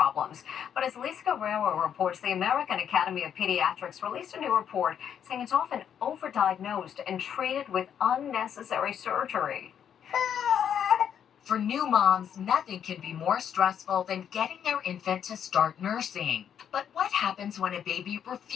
But as Lisa Guerrero reports, the American Academy of Pediatrics released a new report saying it's often overdiagnosed and treated with unnecessary surgery. For new moms, nothing can be more stressful than getting their infant to start nursing. But what happens when a baby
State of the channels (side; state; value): right; quieter; 8.7 dB